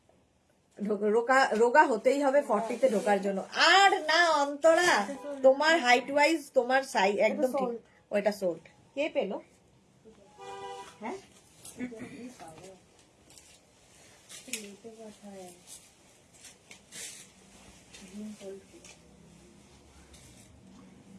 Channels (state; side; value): identical; both; correlation 1.00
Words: রোগা হতেই হবে 40-তে ঢোকার জন্য। আর না অন্তরা, তোমার হাইট ওয়াইজ তোমার সাইজ একদম ঠিক। ওইটা সোল্ড। কে পেলো? হ্যাঁ,